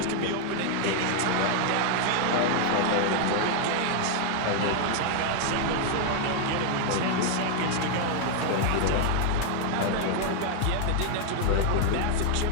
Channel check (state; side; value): different; both; correlation 0.00